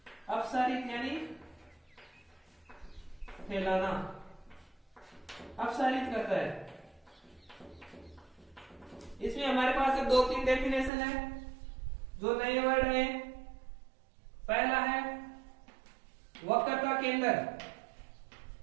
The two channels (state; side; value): drops out; left; at 10.9 s